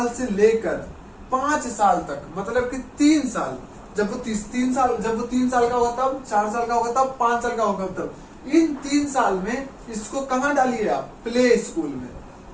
से लेकर 5 साल तक, मतलब कि 3 साल, जब वो 3 साल का होगा तब, 4 साल का होगा तब, 5 साल का होगा तब, इन 3 साल में इसको कहां डालिए आप, प्ले स्कूल में।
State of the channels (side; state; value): both; identical; correlation 1.00